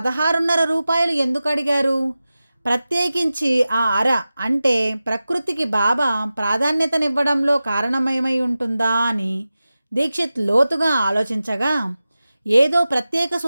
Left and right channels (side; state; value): both; inverted; correlation -0.95